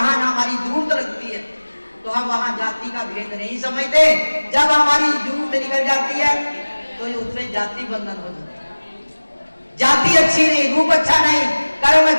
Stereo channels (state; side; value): inverted; both; correlation -1.00